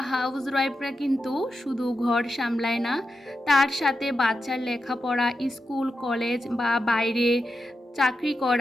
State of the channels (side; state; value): both; normal; correlation 0.89